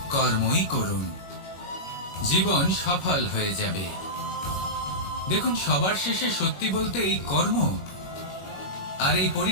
কর্মই করুন। জীবন সফল হয়ে যাবে। দেখুন, সবার শেষে সত্যি বলতে এই কর্ম আর এই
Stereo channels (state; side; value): late; right; 21 ms